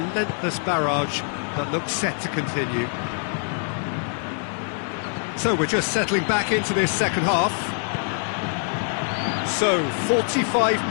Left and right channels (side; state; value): right; silent; 55 dB below the other